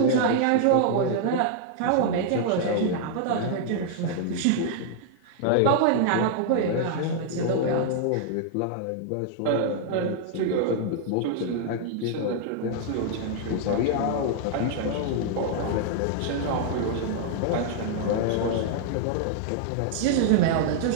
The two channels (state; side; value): different; both; correlation -0.01